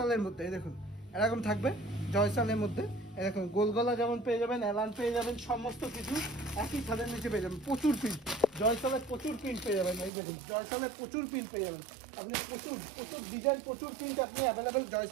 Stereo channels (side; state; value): left; drops out; at 10.1 s